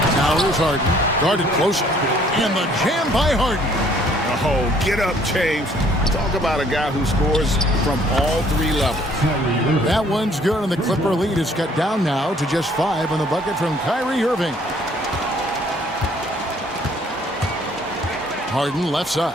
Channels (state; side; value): normal; both; correlation 0.61